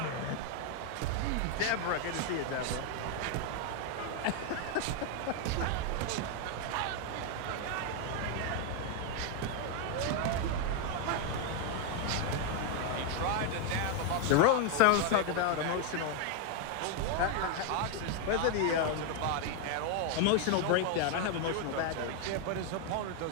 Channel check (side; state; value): both; different; correlation 0.01